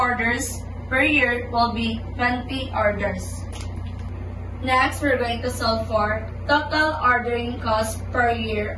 per year will be 20 orders. Next, we're going to solve for total ordering cost per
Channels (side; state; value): both; identical; correlation 1.00